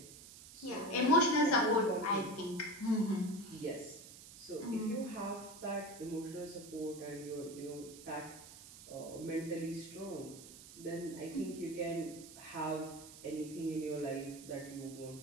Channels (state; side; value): noise; right; hiss, 16 dB below the sound